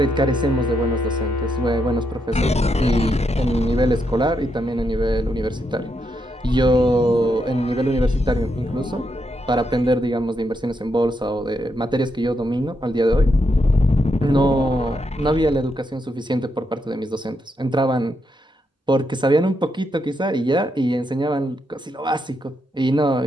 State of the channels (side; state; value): both; normal; correlation 0.81